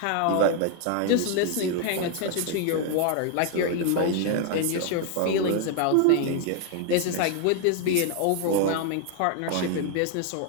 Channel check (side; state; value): both; different; correlation 0.00